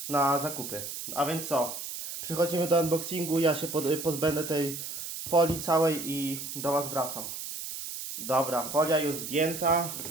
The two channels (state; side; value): noise; right; hiss, 7 dB below the sound